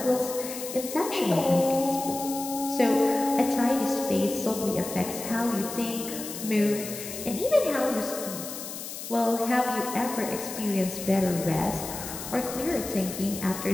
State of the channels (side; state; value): left; noise; hiss, 9 dB below the sound